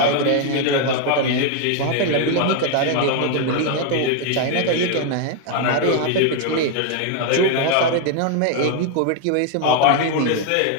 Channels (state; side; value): different; both; correlation 0.01